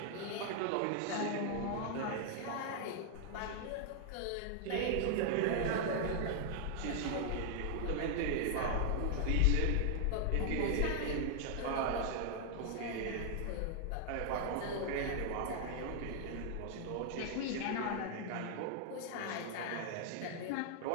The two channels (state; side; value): different; both; correlation 0.00